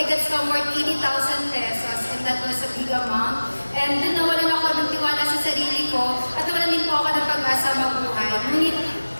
got somewhere 80,000 pesos and that was a big amount. And doon nawalan ako ng tiwala sa sarili ko at nawalan din po ako ng pag-asa mabuhay. Ngunit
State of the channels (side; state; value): both; inverted; correlation -1.00